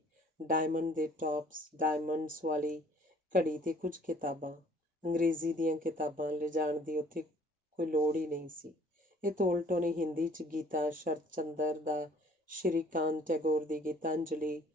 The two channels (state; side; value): normal; both; correlation 0.56